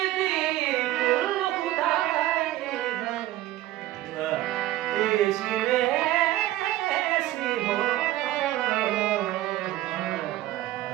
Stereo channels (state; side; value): quieter; left; 15.2 dB